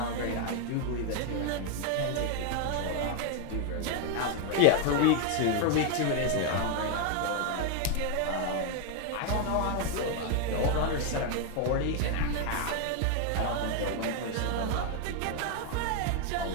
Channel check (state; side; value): different; both; correlation 0.01